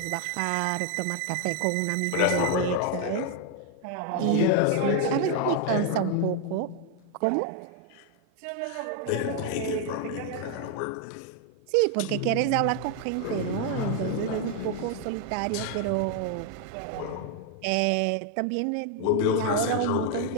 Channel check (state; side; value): different; both; correlation 0.00